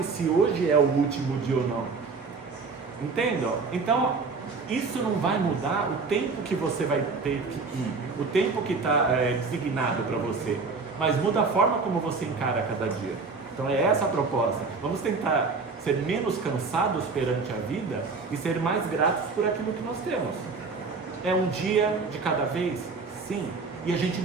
se hoje é o último dia ou não. Entendam? Então, isso não vai mudar o tempo que você vai ter que ir, o tempo que está designado para você, mas muda a forma como você encara cada dia. Então é essa a proposta. Vamos tentar ser menos cansados perante a vida e ser mais gratos por aquilo que nós temos. É um dia de cada vez? Sim. E a gente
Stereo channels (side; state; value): left; quieter; 4.4 dB